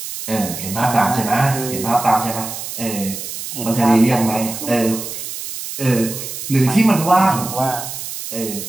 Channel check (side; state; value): right; noise; hiss, 8 dB below the sound